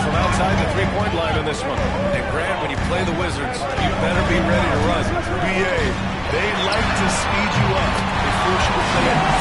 from outside the three-point line in this one. And Grant, when you play the Wizards, you better be ready to run. BA, they like to speed you up. They force you to play at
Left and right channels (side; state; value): both; identical; correlation 1.00